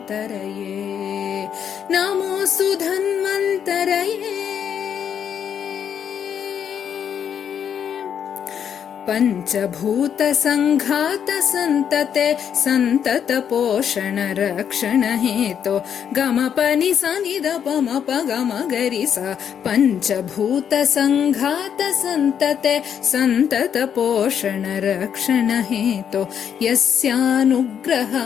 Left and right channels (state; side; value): quieter; right; 8.3 dB